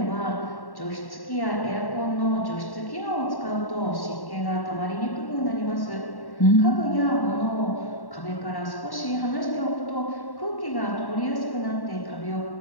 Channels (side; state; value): right; late; 1.1 ms